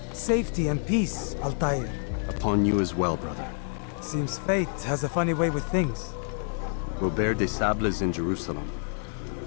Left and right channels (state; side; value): silent; right; 59 dB below the other